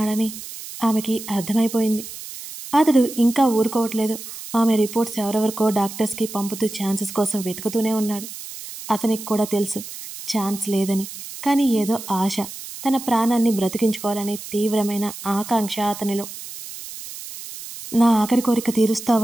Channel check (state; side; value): noise; right; hiss, 12 dB below the sound